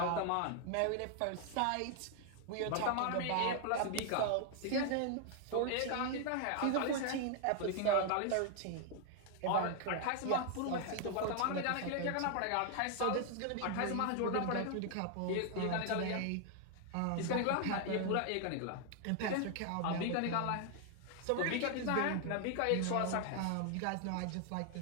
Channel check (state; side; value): different; both; correlation 0.00